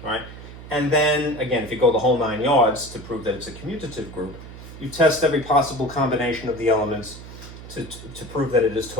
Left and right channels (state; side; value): noise; right; hum, 15 dB below the sound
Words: right? And then again, if you go the whole 9 yards to prove that it's a commutative group, you test every possible combination of the elements to prove that it is